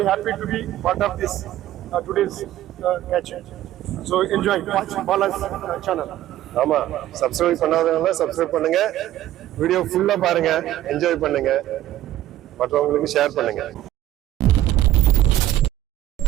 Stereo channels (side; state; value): left; quieter; 13.7 dB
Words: happy to be part of this today's catch. So enjoy, watch Bala's channel. ஆமாம், சப்ஸ்கிரைப் பண்ணாதவங்க சப்ஸ்கிரைப் பண்ணுங்க, வீடியோ ஃபுல்லாக பாருங்க, என்ஜாய் பண்ணுங்க, மற்றவங்களுக்கு ஷேர் பண்ணுங்க.